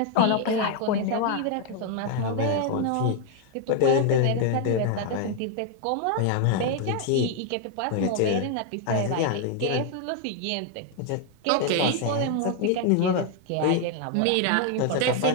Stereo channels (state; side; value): different; both; correlation 0.00